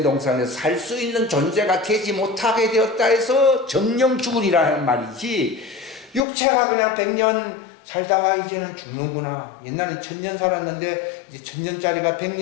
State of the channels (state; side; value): drops out; right; at 6.2 s